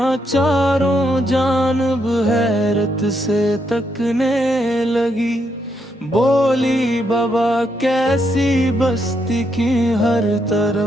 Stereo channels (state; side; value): normal; both; correlation 0.78